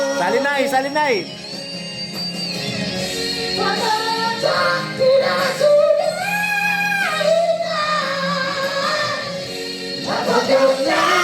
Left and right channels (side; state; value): both; identical; correlation 1.00